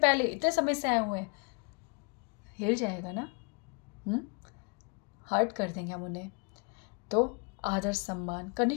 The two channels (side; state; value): right; quieter; 34.3 dB